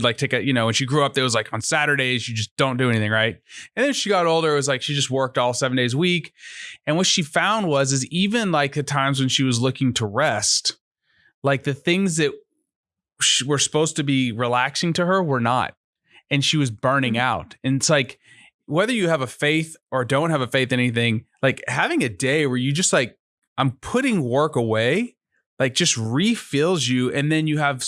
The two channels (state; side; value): identical; both; correlation 1.00